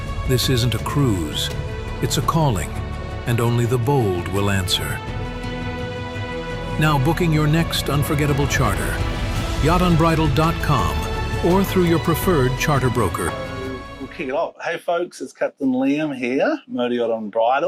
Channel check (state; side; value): identical; both; correlation 1.00